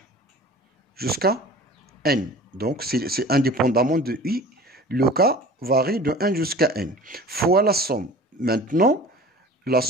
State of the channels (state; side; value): normal; both; correlation 0.41